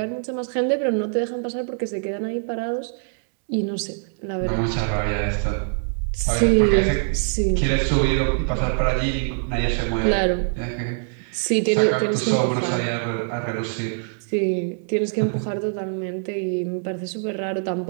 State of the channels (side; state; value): left; silent; digital silence